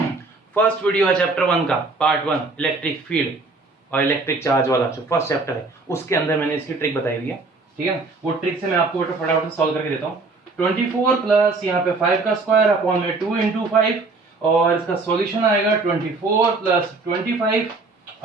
फर्स्ट वीडियो है चैप्टर 1 का पार्ट 1 इलेक्ट्रिक फील्ड और इलेक्ट्रिक चार्ज वाला जो फर्स्ट चैप्टर है उसके अंदर मैंने इसकी ट्रिक बताई हुई है, ठीक है ना। वो ट्रिक से मैं आपको फटाफट सॉल्व करके देता हूँ। 24 प्लस यहाँ पे 5 का स्क्वायर अपॉन में 2 into 5, और इसका सॉल्यूशन आएगा 24 प्लस 25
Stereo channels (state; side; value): quieter; left; 3.6 dB